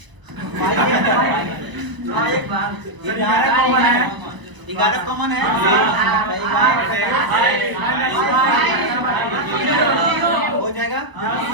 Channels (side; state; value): left; late; 1.0 ms